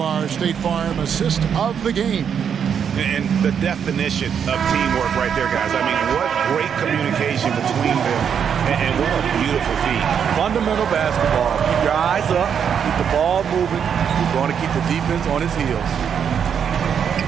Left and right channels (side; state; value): left; quieter; 7.7 dB